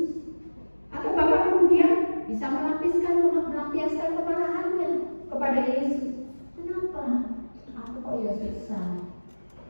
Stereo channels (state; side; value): inverted; both; correlation -1.00